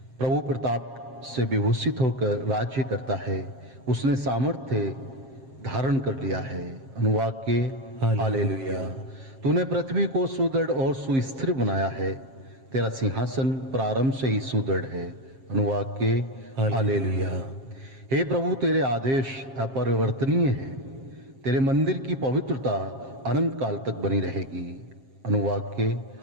प्रभु प्रताप से विभूषित होकर राज्य करता है। उसने सामर्थ्य धारण कर लिया है। अनुवाक्य हालेलुया। तूने पृथ्वी को सुदृढ़ और सुस्थिर बनाया है। तेरा सिंहासन प्रारंभ से ही सुदृढ़ है। अनुवाक्य हालेलुया। हे प्रभु, तेरे आदेश अपरिवर्तनीय हैं। तेरे मंदिर की पवित्रता अनंत काल तक बनी रहेगी। अनुवाक्य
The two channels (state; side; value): late; left; 7.5 ms